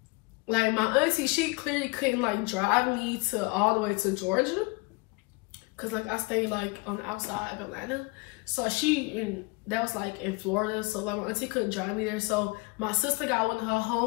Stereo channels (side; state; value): right; quieter; 27.0 dB